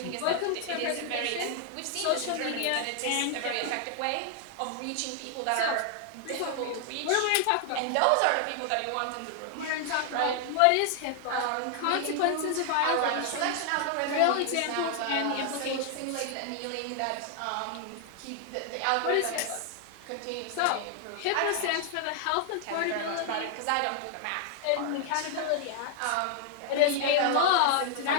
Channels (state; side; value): different; both; correlation 0.00